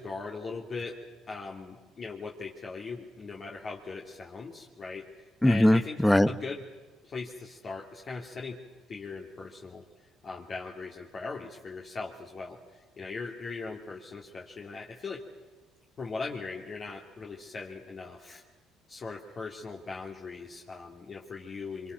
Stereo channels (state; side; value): normal; both; correlation 0.96